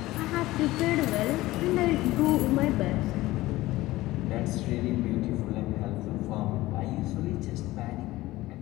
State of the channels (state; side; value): quieter; right; 17.9 dB